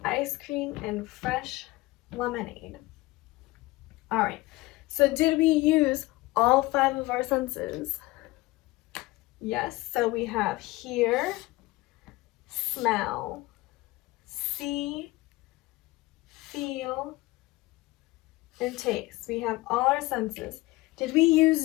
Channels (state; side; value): quieter; right; 20.2 dB